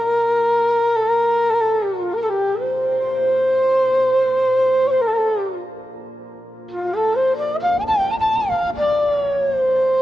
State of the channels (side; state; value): both; normal; correlation 0.91